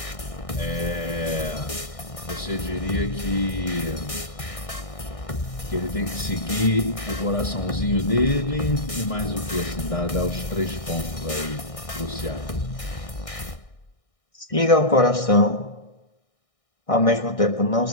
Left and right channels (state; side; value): late; right; 1.6 ms